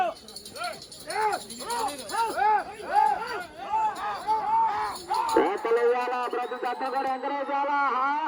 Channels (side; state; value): both; identical; correlation 1.00